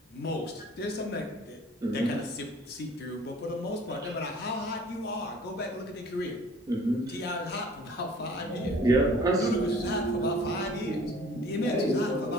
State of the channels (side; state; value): both; normal; correlation 0.50